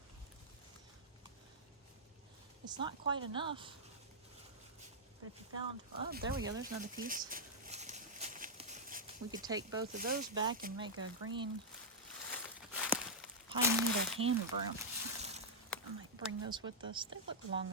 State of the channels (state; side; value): normal; both; correlation -0.08